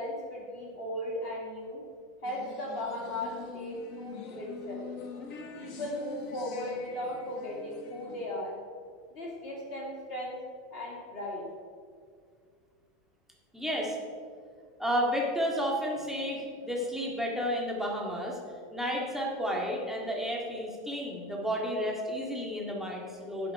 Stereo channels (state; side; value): normal; both; correlation 0.33